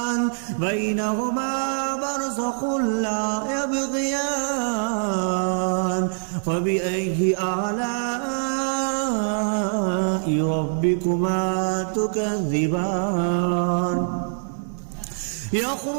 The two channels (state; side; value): silent; left; 63 dB below the other